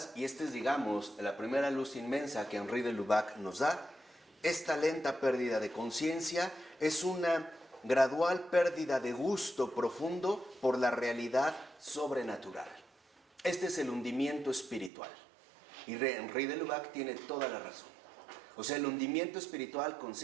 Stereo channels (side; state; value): left; drops out; at 14.9 s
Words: y esta es, digamos, la primera luz inmensa que Henri de Lubac nos da, esta lenta pérdida de conciencia es una gradual pérdida de gusto profundo por la realidad sobrenatural. Este es el hundimiento espiritual. Y Henri de Lubac tiene toda la razón. O sea, el hundimiento espiritual